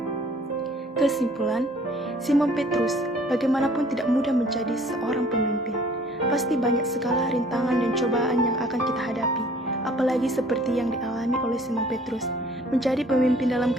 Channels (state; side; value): normal; both; correlation 0.55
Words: Kesimpulan, Simon Petrus bagaimanapun tidak mudah menjadi seorang pemimpin. Pasti banyak segala rintangan dan cobaan yang akan kita hadapi, apalagi seperti yang dialami oleh Simon Petrus. Menjadi pemimpin dalam